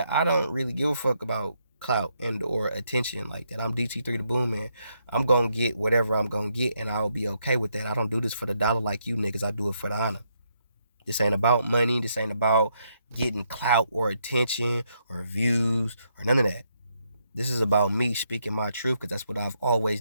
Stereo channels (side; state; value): both; inverted; correlation -0.77